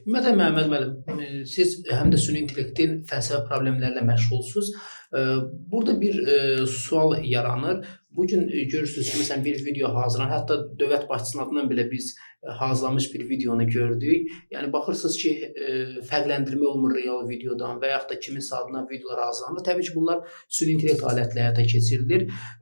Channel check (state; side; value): inverted; both; correlation -1.00